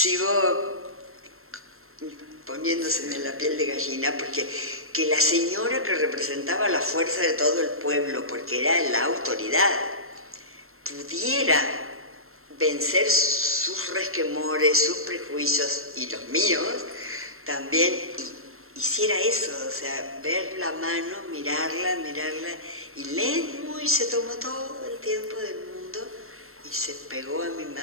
poniéndoseme la piel de gallina, porque que la señora que representaba la fuerza de todo el pueblo, porque era la autoridad, pudiera vencer sus resquemores, sus prejuicios y los míos también, y hiciera eso, o sea, ver la mano, mirarla, y lento, y se tomó todo el tiempo del mundo y se pegó a mi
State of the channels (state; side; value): late; left; 0.62 ms